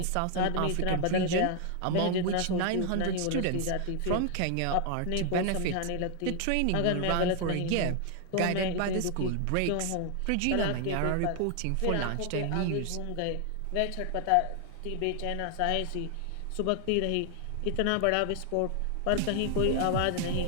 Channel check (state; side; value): different; both; correlation 0.00